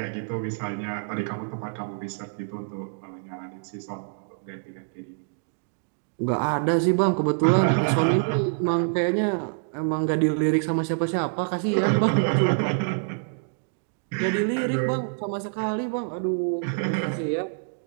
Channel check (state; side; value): silent; left; digital silence